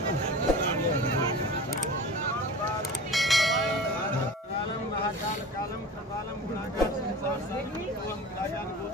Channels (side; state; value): both; normal; correlation 0.36